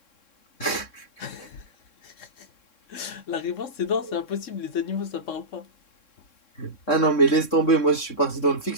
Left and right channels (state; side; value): late; right; 3.6 ms